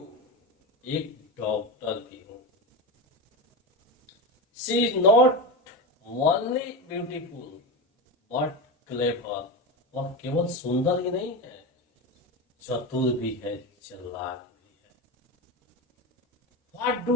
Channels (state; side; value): normal; both; correlation 0.18